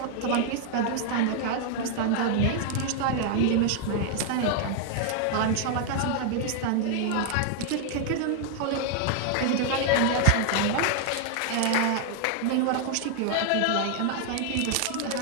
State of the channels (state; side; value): different; both; correlation 0.00